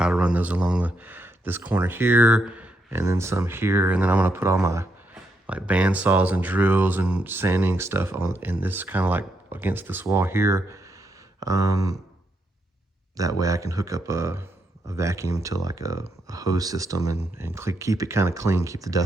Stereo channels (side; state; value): both; normal; correlation 0.79